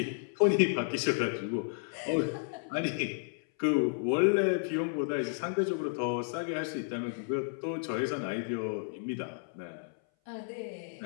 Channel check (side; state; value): right; silent; 56 dB below the other